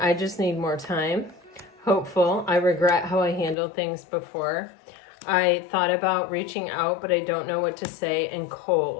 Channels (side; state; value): right; drops out; at 3.6 s